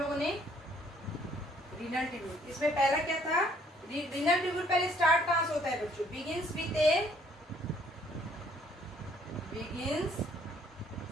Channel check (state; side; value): normal; both; correlation 0.63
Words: ने। रीनल ट्यूब्यूल, इसमें पहला क्या था, रीनल ट्यूब्यूल पहले स्टार्ट कहां से होता है बच्चों, begins with